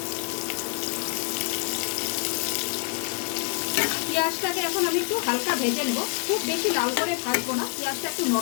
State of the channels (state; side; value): quieter; right; 34.1 dB